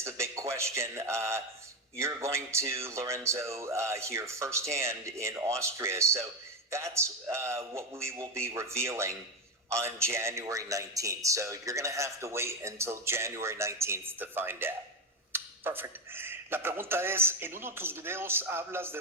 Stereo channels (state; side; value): normal; both; correlation 0.11